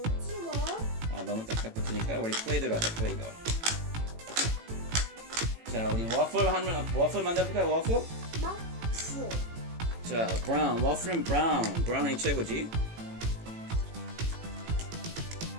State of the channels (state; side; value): late; left; 18 ms